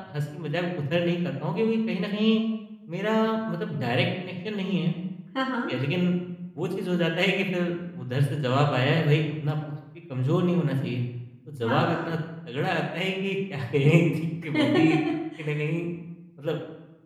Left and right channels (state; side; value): identical; both; correlation 1.00